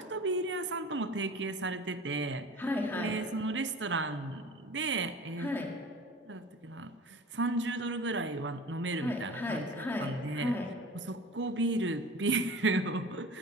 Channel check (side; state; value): both; normal; correlation 0.39